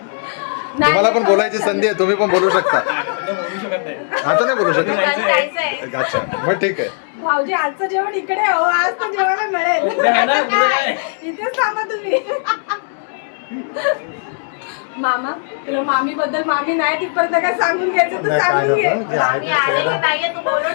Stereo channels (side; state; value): right; silent; digital silence